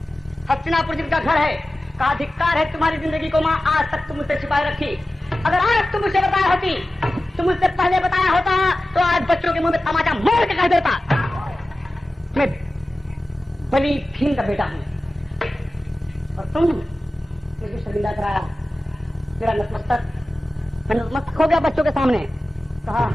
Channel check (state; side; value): normal; both; correlation 0.95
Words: हस्तिनापुर जिनका घर है, का अधिकार है तुम्हारी जिंदगी को माँ आज तक तुम मुझसे छिपाए रखी। अगर आज तुम मुझे बताया होती, तुम मुझसे पहले बताया होता तो आज बच्चों के मुंह में तमाचा मार के कह देता मैं बली भीम का बेटा हूँ। और तुम मुझे शर्मिंदा कराया, मेरा नतमस्तक, मैं नतमस्तक हो गया बच्चों के सामने। कहा